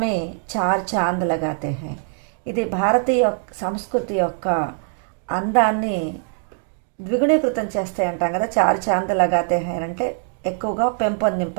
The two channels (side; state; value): left; silent; 64 dB below the other